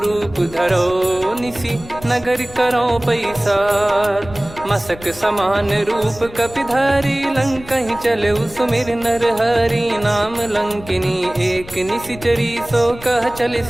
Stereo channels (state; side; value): noise; left; rumble, 17 dB below the sound